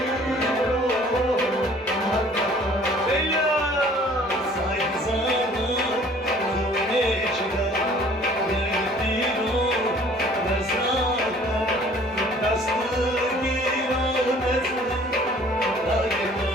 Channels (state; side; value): normal; both; correlation 0.53